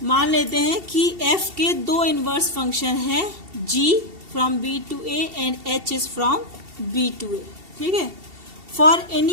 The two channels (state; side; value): late; left; 2.7 ms